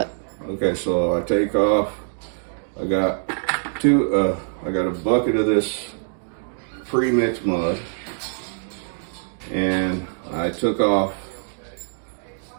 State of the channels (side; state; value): left; silent; digital silence